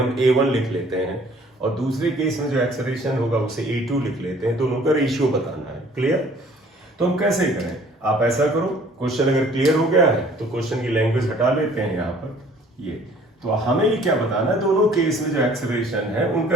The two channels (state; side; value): normal; both; correlation 0.55